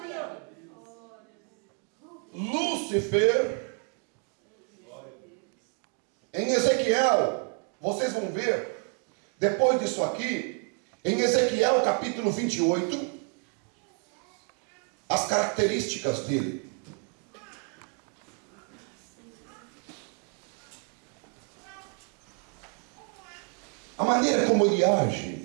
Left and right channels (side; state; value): left; quieter; 39.0 dB